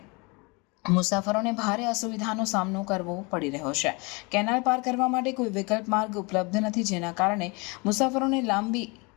મુસાફરોને ભારે અસુવિધાનો સામનો કરવો પડી રહ્યો છે। કેનાલ પાર કરવા માટે કોઈ વિકલ્પ માર્ગ ઉપલબ્ધ નથી, જેના કારણે મુસાફરોને લાંબી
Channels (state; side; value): quieter; right; 28.3 dB